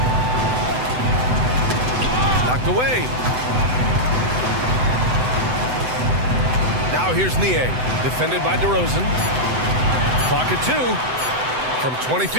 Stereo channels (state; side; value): late; left; 7.9 ms